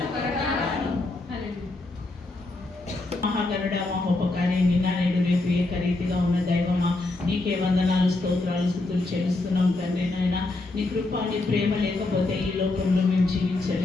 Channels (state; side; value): quieter; right; 3.0 dB